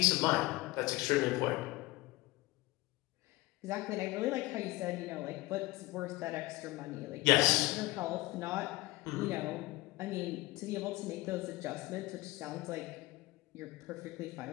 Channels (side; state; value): right; quieter; 20.2 dB